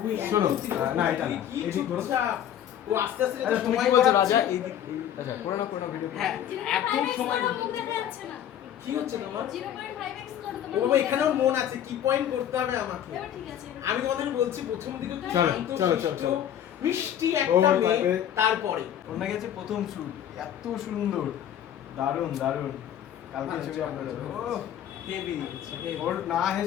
শোনো, না এটা না, কি এদিক ধরো। চুপচাপ। ও আস্তে আস্তে আচ্ছা তুমি কি বলছো রাজা? এই আচ্ছা করে না ভিডিও। হ্যাঁ এত সময় মুখ দেখা যাচ্ছে না। কি হচ্ছে তোমার? 0.5x করো ও তোমার। বাবা, এখানেও মন আছে, কি পয়েন্ট করতে হবে আমাকে। এবার ঠিক আছে। আমি তোমাদের বলছি প্রথম দিকে একটু চলো, শান্ত, চলো, শিষ্ট, চলো। মিষ্টি একটা ও, মেয়ে, তারপরে- তারপরে ওর নাকি আছে প্রথম শুট, এত সুন্দর, দারুণ দারুণ। কালকে ছবি আপলোড হবে। ও হেভি ওর না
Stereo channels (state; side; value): quieter; right; 10.3 dB